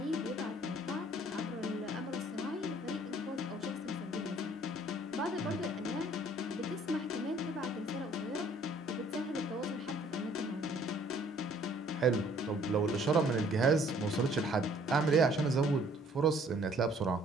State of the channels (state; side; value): normal; both; correlation 0.59